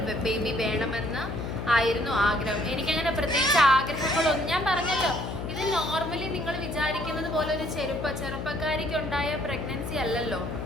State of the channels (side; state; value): left; noise; hum, 6 dB below the sound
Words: baby വേണമെന്ന് ആയിരുന്നു ആഗ്രഹം. എനിക്കങ്ങനെ പ്രത്യേകിച്ച് ആഗ്രഹങ്ങളൊന്നും, ഞാൻ പറഞ്ഞല്ലോ, ഇത് നോർമലി നിങ്ങൾ വിചാരിക്കുന്നത് പോലെ ഒരു ചെറുപ്പക്കാരിക്ക് ഉണ്ടായ പ്രഗ്നൻസി അല്ലല്ലോ.